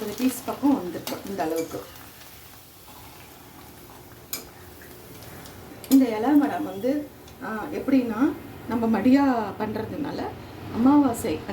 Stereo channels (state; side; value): identical; both; correlation 1.00